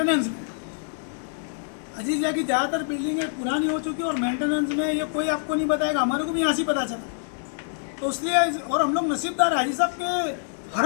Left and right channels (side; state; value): right; silent; 61 dB below the other